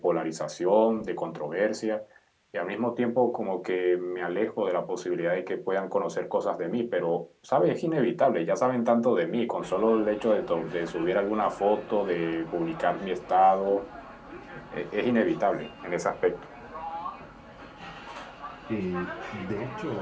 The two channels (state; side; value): identical; both; correlation 1.00